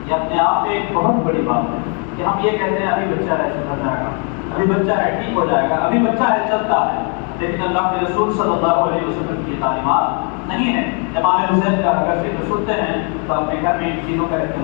یہ اپنے آپ میں ایک بہت بڑی بات ہے کہ ہم یہ کہتے ہیں ابھی بچہ ہے سدھر جائے گا، ابھی بچہ ہے ٹھیک ہو جائے گا، ابھی بچہ ہے چلتا ہے، لیکن اللہ کے رسول صلی اللہ علیہ وسلم کی تعلیمات نہیں ہے۔ امام حسین کا اگر ذکر سنتے ہیں تو اپنے گھر میں ان چیزوں کا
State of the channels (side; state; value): right; quieter; 38.9 dB